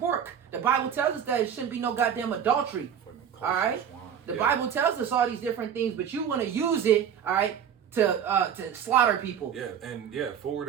The Bible tells us that it shouldn't be no goddamn adultery. All right, the Bible tells us all these different things, but you want to use it, all right, to slaughter people. Yeah, and yeah,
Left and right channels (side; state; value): left; quieter; 8.5 dB